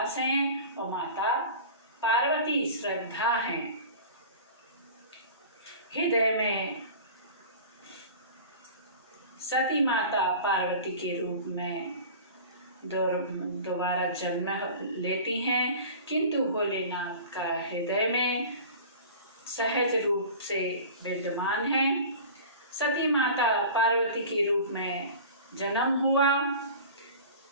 हैं और माता पार्वती श्रद्धा हैं। हृदय में सती माता पार्वती के रूप में दोबारा जन्म लेती हैं, किंतु भोलेनाथ का हृदय में सहज रूप से विद्यमान है। सती माता पार्वती के रूप में जन्म हुआ,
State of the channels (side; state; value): both; inverted; correlation -0.38